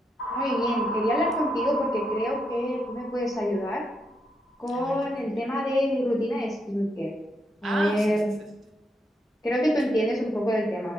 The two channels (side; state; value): both; normal; correlation 0.80